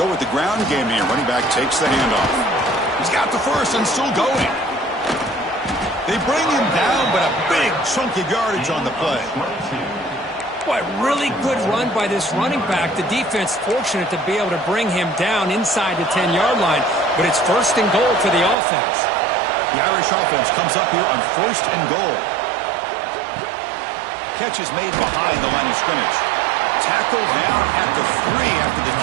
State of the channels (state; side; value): drops out; left; at 18.6 s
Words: with the ground game here. Running back takes the handoff. He's got the first and still going. They bring him down, but a big chunk of yardage on the play. Boy, really good run by this running back. The defense fortunate to be able to bring him down inside the 10-yard line, but it's 1st and goal for the offense. The Irish offense comes up here on 1st and goal. Catch is made behind the line of scrimmage. Tackled down at the 3 after the